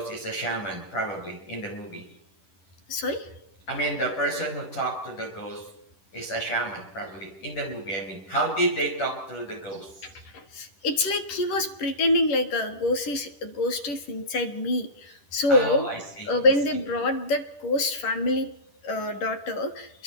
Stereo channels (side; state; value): right; late; 10 ms